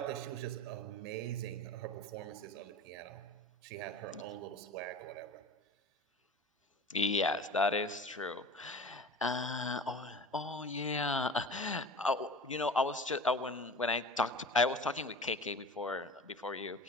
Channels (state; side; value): normal; both; correlation 0.37